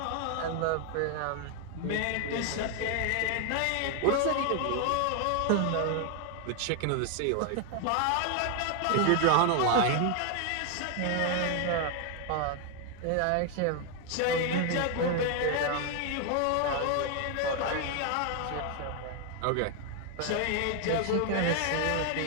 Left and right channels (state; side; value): different; both; correlation 0.01